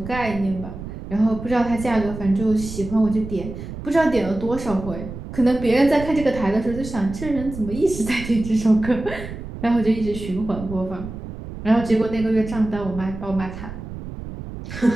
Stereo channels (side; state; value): right; noise; rumble, 10 dB below the sound